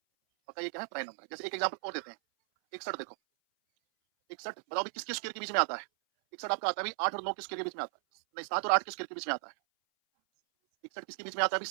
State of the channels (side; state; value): left; silent; 54 dB below the other